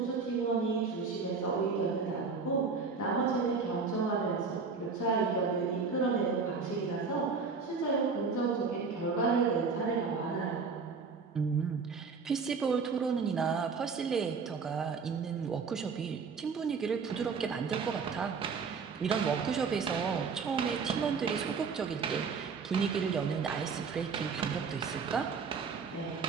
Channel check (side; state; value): left; quieter; 5.1 dB